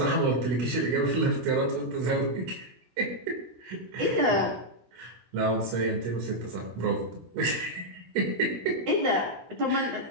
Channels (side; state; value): left; late; 17 ms